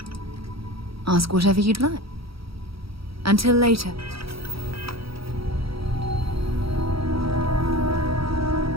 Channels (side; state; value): left; late; 0.76 ms